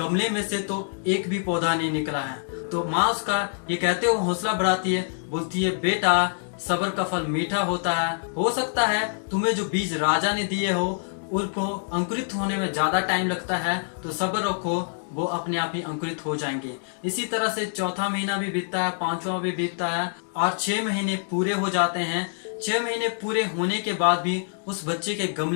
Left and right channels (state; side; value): silent; right; digital silence